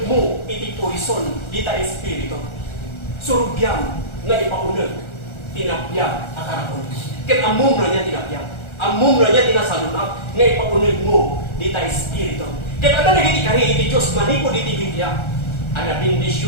mo, iti poison, dita espiritu. Surugyam na ipaunag, tinapyag akarapon. Ket amom na niya tinapyag. Amom na niya tinasalunap nga ipaunag mo dita espiritu. Ket ada nagiti kari iti Dios manipod iti Biblia. Ana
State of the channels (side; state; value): right; late; 1.4 ms